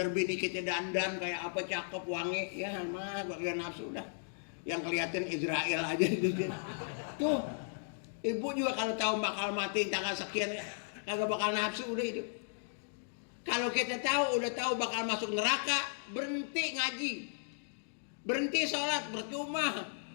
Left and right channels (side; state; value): right; silent; digital silence